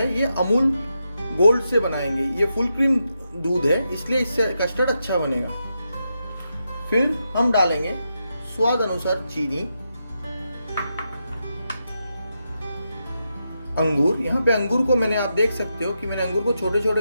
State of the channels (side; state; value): both; inverted; correlation -0.85